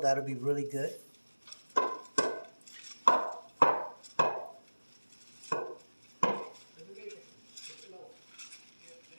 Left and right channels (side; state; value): both; inverted; correlation -1.00